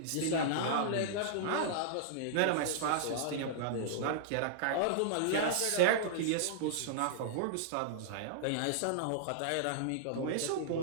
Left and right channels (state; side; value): different; both; correlation -0.02